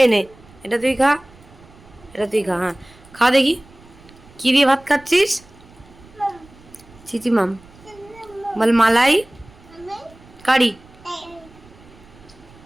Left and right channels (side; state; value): right; noise; rumble, 24 dB below the sound